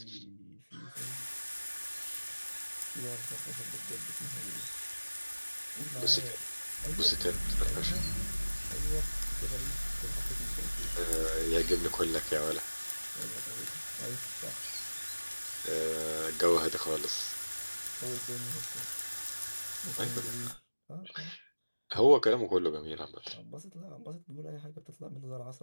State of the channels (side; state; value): both; inverted; correlation -1.00